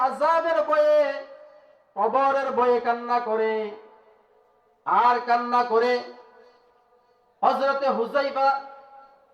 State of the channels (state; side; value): identical; both; correlation 1.00